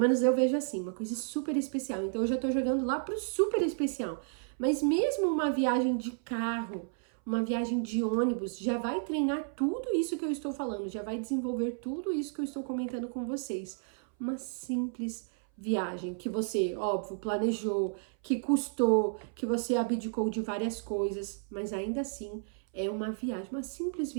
eu vejo assim, uma coisa super especial. Então eu já tô jogando lá pro super especial. Mas mesmo uma viagem de carro, uma viagem de ônibus, já vai treinar tudo isso que eu estou falando, já vai desenvolver tudo isso que eu estou comentando com vocês. Uma simples viagem que você, óbvio, planejou, que custou, que você abdicou de várias coisas, mas ainda assim é uma viagem, uma simples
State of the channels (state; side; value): silent; left; 56 dB below the other